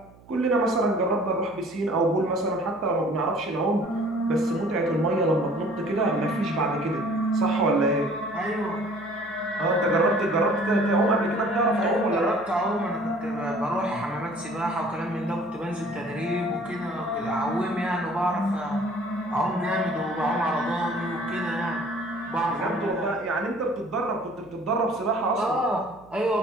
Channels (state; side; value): noise; right; hum, 25 dB below the sound